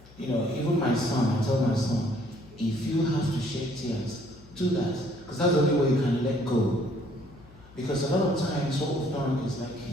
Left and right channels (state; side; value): noise; left; hum, 23 dB below the sound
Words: You know, even my son, I told my son, if you have to shed tears, do that. Because that's the only way you can let go. Because a lot of times what we've done is, like